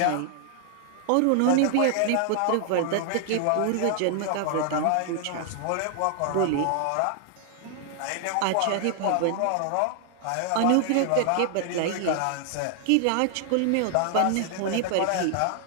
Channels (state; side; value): different; both; correlation 0.00